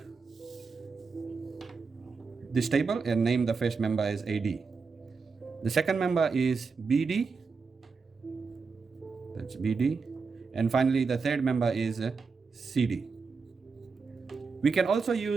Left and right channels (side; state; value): left; quieter; 4.9 dB